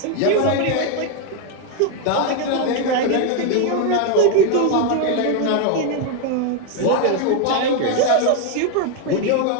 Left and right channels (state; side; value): different; both; correlation 0.01